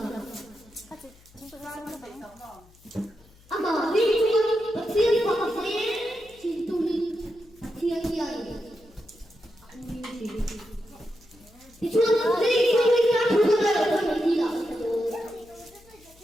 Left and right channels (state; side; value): noise; left; hum, 27 dB below the sound